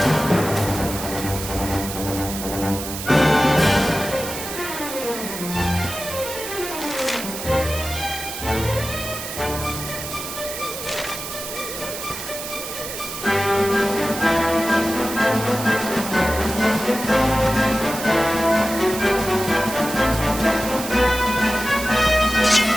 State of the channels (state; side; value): noise; right; hiss, 8 dB below the sound